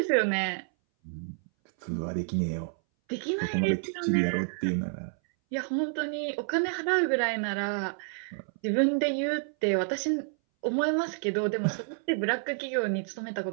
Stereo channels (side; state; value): left; silent; 58 dB below the other